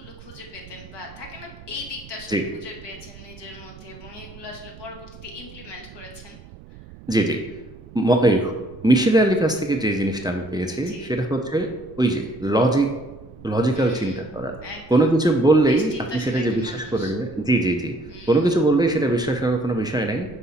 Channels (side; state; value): right; noise; rumble, 19 dB below the sound